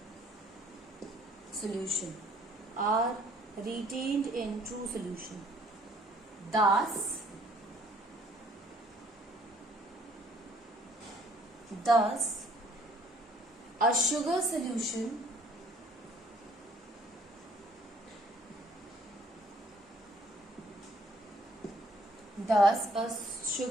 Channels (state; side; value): normal; both; correlation 0.60